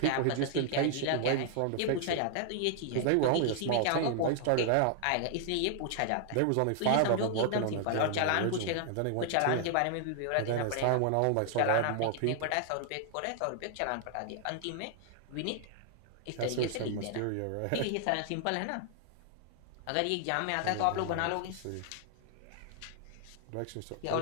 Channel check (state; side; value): different; both; correlation 0.00